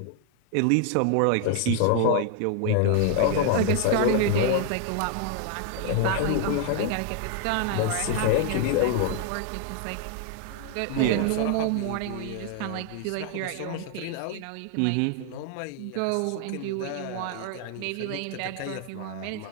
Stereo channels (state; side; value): different; both; correlation 0.00